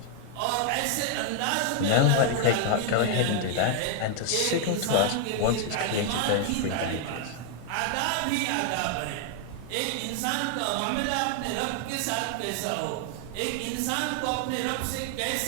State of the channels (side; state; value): both; different; correlation 0.00